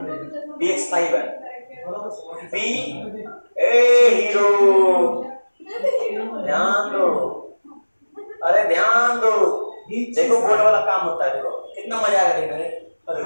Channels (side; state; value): both; inverted; correlation -1.00